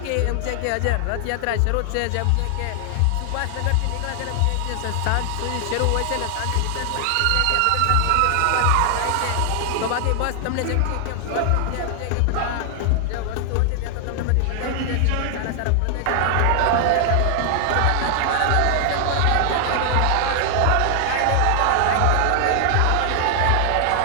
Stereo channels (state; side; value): different; both; correlation 0.00